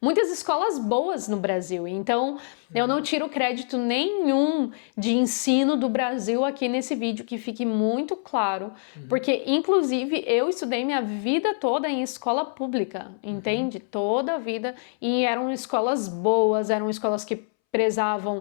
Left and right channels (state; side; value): silent; right; 62 dB below the other